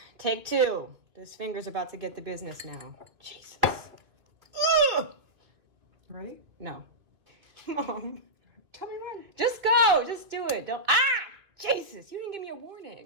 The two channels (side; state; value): left; late; 2.5 ms